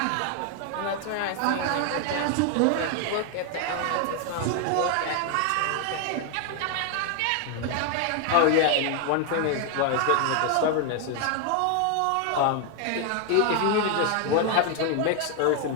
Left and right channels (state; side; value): different; both; correlation 0.01